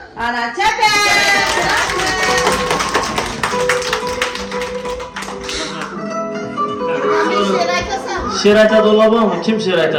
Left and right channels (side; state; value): both; identical; correlation 1.00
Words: ana çepe. Şirayta dolabı mı? Kim şirayta